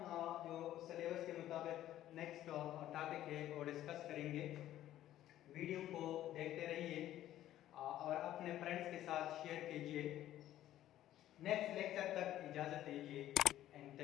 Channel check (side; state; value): right; quieter; 13.0 dB